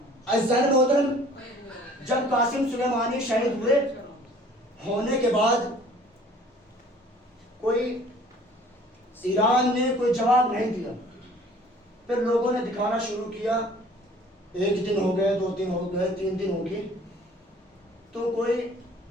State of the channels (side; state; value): both; normal; correlation 0.52